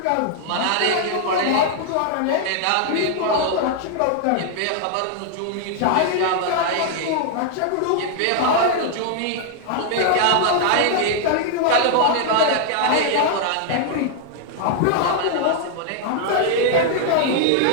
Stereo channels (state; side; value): different; both; correlation 0.00